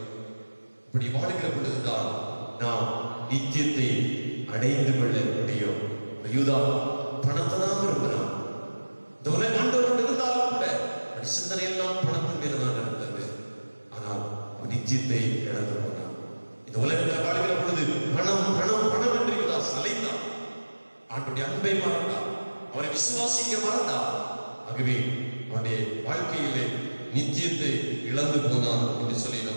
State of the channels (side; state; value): both; inverted; correlation -1.00